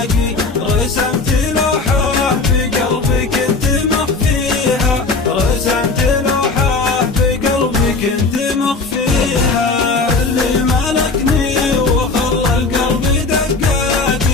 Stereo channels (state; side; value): quieter; right; 3.9 dB